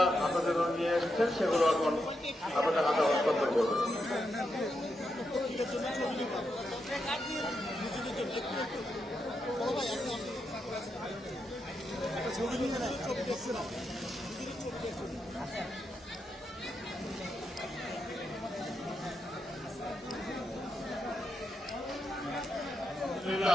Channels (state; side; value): normal; both; correlation 0.84